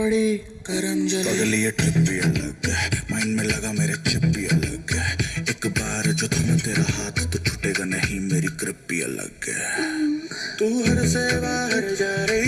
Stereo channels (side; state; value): both; identical; correlation 1.00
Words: गरम जले पगली ये ट्रिप भी अलग है माइंड में लगा मेरे चिप भी अलग है एक बार जो थम तेरा हाथ तो छूटेगा नहीं मेरी ग्रिप भी अलग है तू हर से बाहर जा